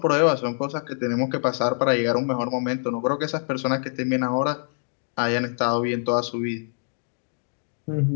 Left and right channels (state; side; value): silent; right; digital silence